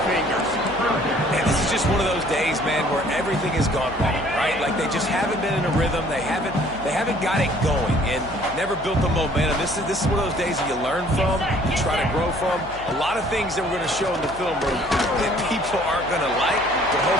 fingers. And this is just one of those days, man, where everything has gone wrong, right? Like they just haven't been in a rhythm. They haven't got it going and never built the momentum. This is one of those days that you learn from, you try to grow from. A lot of things that we're going to show in the film room that people aren't going to like, but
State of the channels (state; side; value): noise; left; hum, 17 dB below the sound